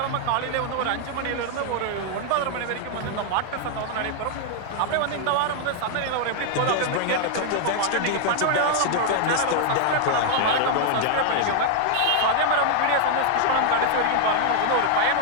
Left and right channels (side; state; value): both; different; correlation 0.00